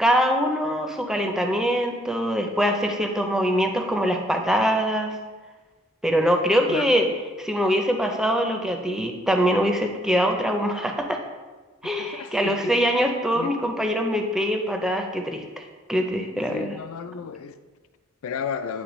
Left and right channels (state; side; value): normal; both; correlation 0.69